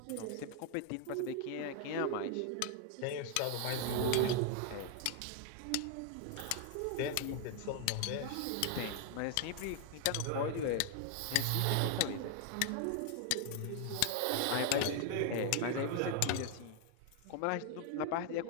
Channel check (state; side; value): different; both; correlation 0.00